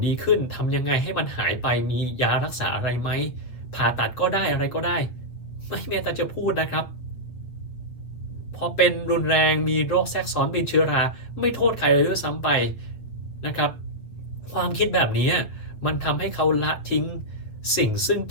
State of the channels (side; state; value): right; late; 7.9 ms